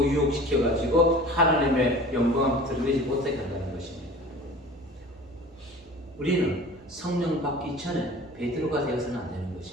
유혹시켜가지고 하나님의 영광을 드러내지 못하게 한다는 것입니다. 우리는 성령 받기 전에 베드로가 되어서는 안 되는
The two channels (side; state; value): both; normal; correlation 0.41